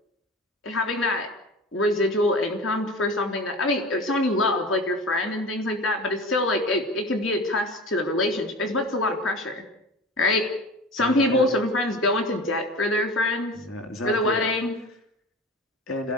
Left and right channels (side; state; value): both; normal; correlation 0.34